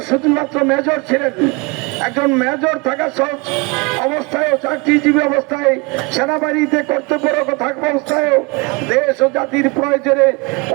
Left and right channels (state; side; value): quieter; left; 27.8 dB